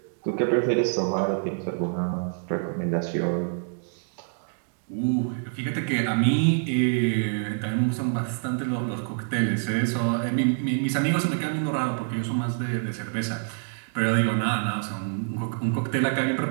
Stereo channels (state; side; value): silent; left; digital silence